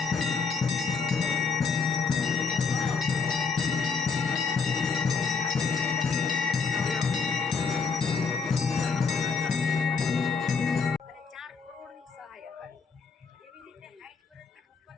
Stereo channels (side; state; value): right; quieter; 5.1 dB